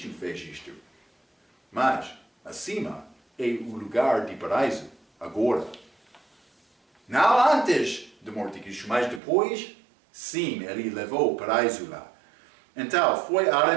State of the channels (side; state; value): left; drops out; at 9.2 s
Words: fez isto. Mas, acima é o lugar de paraíso, agora. Não antes da morte de Cristo, mas depois, sim, ele levou o paraíso lá. Então, foi